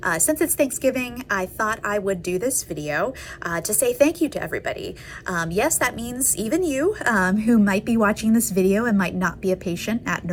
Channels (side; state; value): both; identical; correlation 1.00